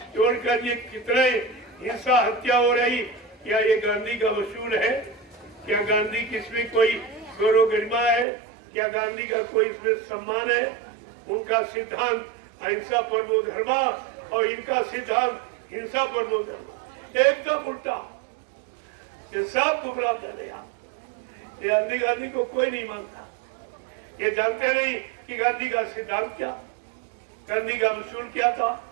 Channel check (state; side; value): drops out; left; at 8.2 s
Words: छोड़कर ये कितने हिंसा, हत्या हो रही। क्या ये गांधी का वसूल है? क्या गांधी की इसमें कोई गौरव गरिमा है? क्या गांधी का कोई इसमें सम्मान है? उनका सिद्धांत अहिंसा परमो धर्मा और इनका सिद्धांत हिंसा परमो धर्मा, एकदम उल्टा। ये सब गुमराह कर रहे आप। ये गांधी को कोई नहीं मानता। ये जानते नहीं कि गांधी का सिद्धांत क्या, गांधी का वसूल क्या था।